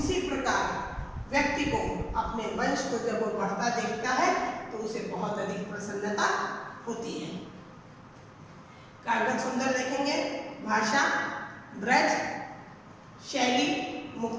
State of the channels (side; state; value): both; identical; correlation 1.00